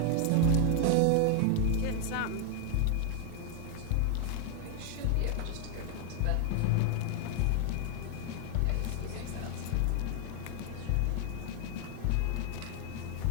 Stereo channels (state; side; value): different; both; correlation 0.00